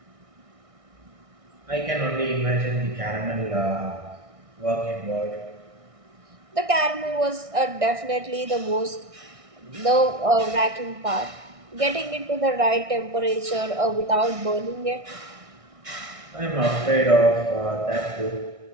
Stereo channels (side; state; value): left; late; 1.6 ms